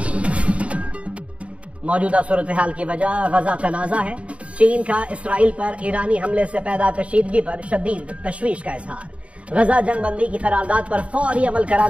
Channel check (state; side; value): late; left; 0.063 ms